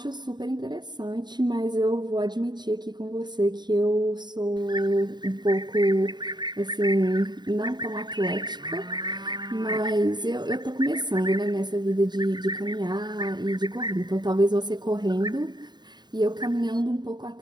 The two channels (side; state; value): left; late; 0.21 ms